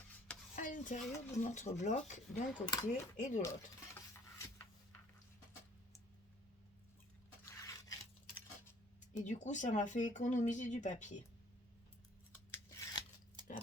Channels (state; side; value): normal; both; correlation 0.58